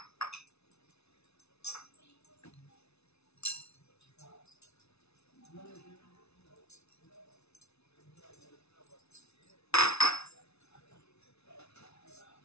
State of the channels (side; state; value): right; late; 0.80 ms